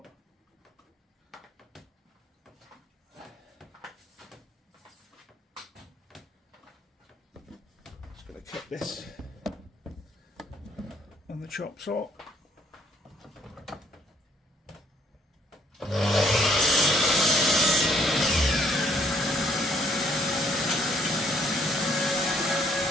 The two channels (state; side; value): normal; both; correlation 0.66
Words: Just going to cut this on the chop saw.